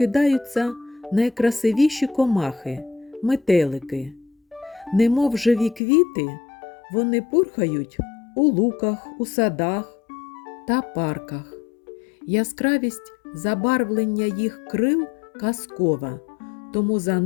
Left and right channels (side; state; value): right; drops out; at 5.8 s